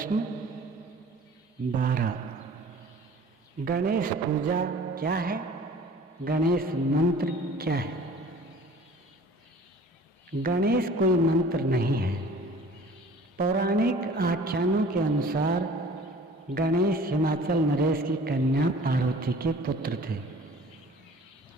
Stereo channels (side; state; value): both; normal; correlation 0.47